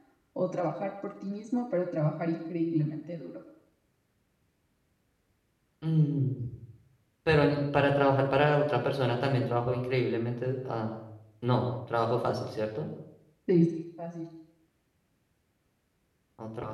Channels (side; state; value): both; identical; correlation 1.00